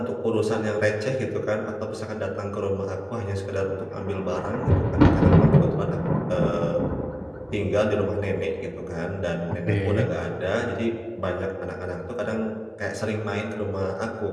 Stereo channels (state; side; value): identical; both; correlation 1.00